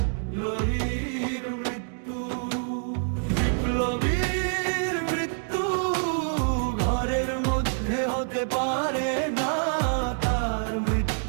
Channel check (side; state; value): left; silent; digital silence